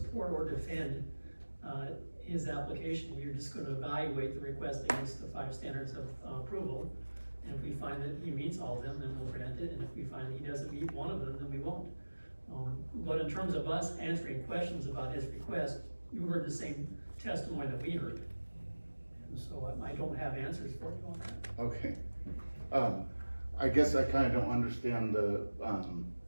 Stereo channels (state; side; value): inverted; both; correlation -1.00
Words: or defend, his application. We're just gonna evaluate the request against the 5 standards of approval. And if we find that he meets all of them, then we'll grant it. And if we find that he doesn't meet one of them, then we won't. But in terms of us answering questions about his request, you heard the same testimony that we heard. And so I don't have answers for you on that. Okay. I guess I kinda don't understand the